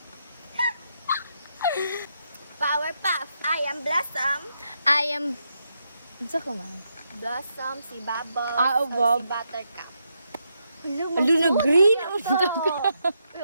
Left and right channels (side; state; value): both; inverted; correlation -0.81